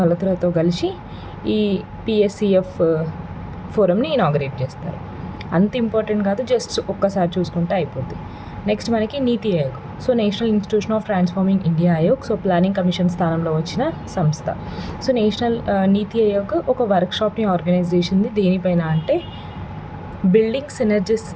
మల్హోత్రాతో కలిసి ఈ PSCF ఫోరంని ఇనాగ్రేట్ చేస్తారు. అంత ఇంపార్టెంట్ కాదు, జస్ట్ ఒక్కసారి చూసుకుంటే అయిపోద్ది. నెక్స్ట్ మనకి నీతి Aayog. So national institution of transforming India Aayog. So planning commission స్థానంలో వచ్చిన సంస్థ. సో నేషనల్ నీతి ఆయోగ్ ఒక వర్క్షాప్ని ఆర్గనైజ్ చేసింది. దేనిపైన అంటే building synergies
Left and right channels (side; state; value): both; identical; correlation 1.00